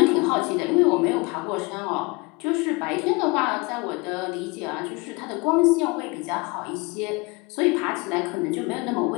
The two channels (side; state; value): right; quieter; 26.2 dB